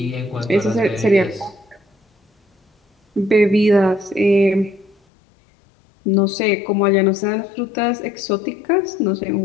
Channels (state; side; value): drops out; right; at 5.0 s